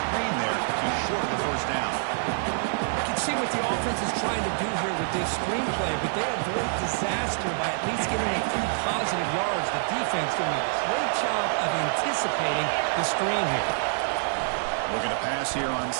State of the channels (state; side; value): silent; left; 58 dB below the other